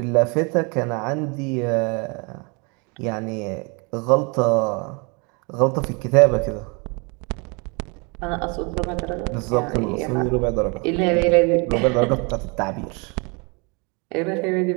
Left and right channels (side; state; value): left; quieter; 31.5 dB